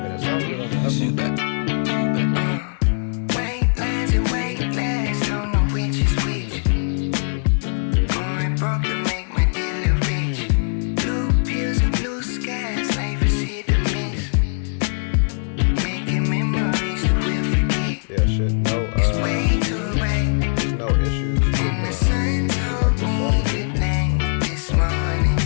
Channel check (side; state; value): right; silent; digital silence